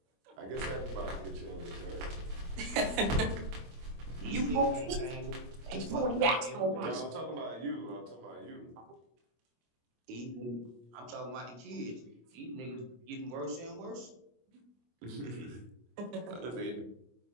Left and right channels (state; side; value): late; left; 25 ms